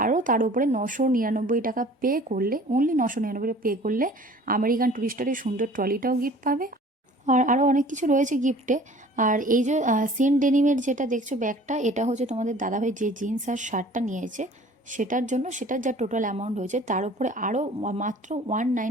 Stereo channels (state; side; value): normal; both; correlation 0.49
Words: আরও তার উপরে 999 টাকা পে করলে, অনলি 999 পে করলে আমেরিকান টুরিস্টারের সুন্দর ট্রলিটাও গিফট পাবে। আর আরও অনেক কিছু রয়েছে গিফটে। আর এই যে সিন ডেনিমের যেটা দেখছো ব্যাগটা, এটা হচ্ছে তোমাদের দাদাভাই যে জিন্স আর শার্টটা নিয়েছে সেটার জন্য, সেটার যা টোটাল অ্যামাউন্ট হয়েছে তার উপরে আরও মাত্র